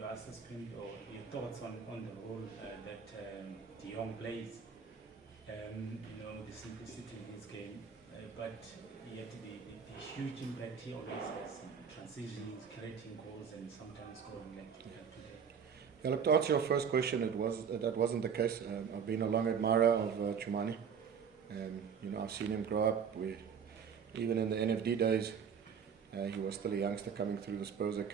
assessment or your thoughts on the role that Jong plays. The simplicity in his game, but yet the huge impact he always has in transitions, creating goals, and sometimes scoring like we have today. Yeah, look, to answer your first question, that wasn't the case. I've been a long admirer of Chumani. I've seen him grow up. Even in the NFD days, he was still a youngster coming through the Spurs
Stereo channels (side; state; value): left; quieter; 6.9 dB